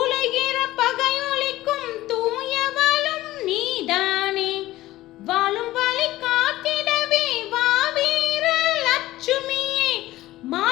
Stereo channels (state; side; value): quieter; right; 16.3 dB